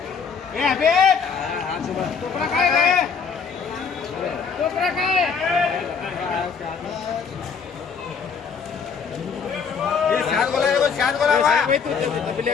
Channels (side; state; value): right; quieter; 6.0 dB